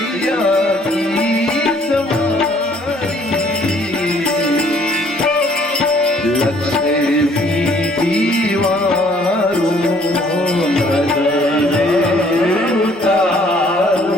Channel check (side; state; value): both; normal; correlation 0.60